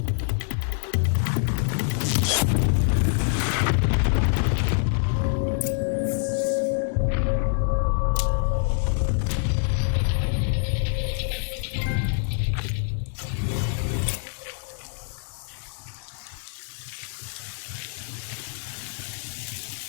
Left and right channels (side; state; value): right; silent; digital silence